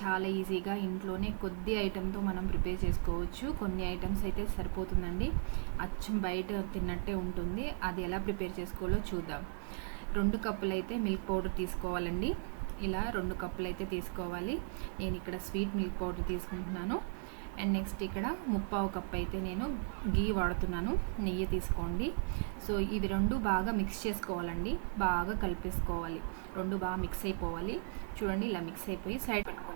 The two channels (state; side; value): silent; left; 54 dB below the other